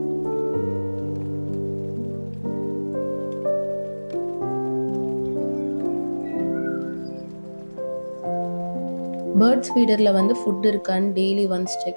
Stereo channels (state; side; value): inverted; both; correlation -1.00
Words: பேர்ட்ஸ் ஃபீடரில் வந்து ஃபுட் இருக்கான்னு டெய்லி ஒன்ஸ்